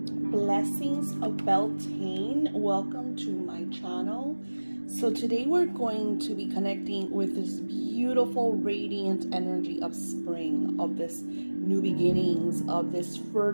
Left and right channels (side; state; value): both; inverted; correlation -1.00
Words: Blessings of Beltane. Welcome to my channel. So today we're going to be connecting with this beautiful radiant energy of spring, of this new beginnings, of this